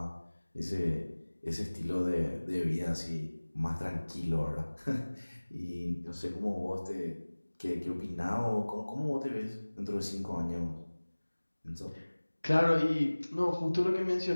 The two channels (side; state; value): both; inverted; correlation -1.00